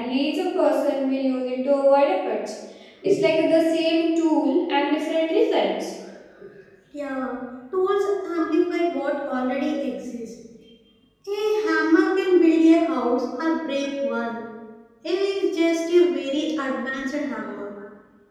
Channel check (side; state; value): both; identical; correlation 1.00